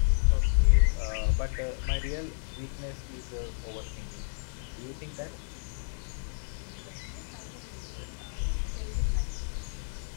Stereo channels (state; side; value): silent; right; digital silence